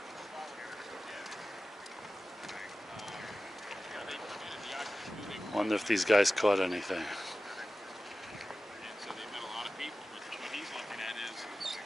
Wonder if these guys caught anything. So they met a lot of people, but what he's looking at is,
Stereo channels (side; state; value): both; normal; correlation 0.95